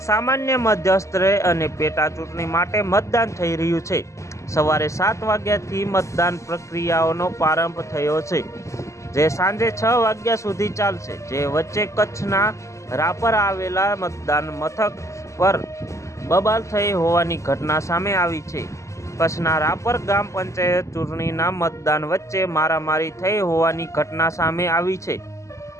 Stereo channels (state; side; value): late; right; 0.15 ms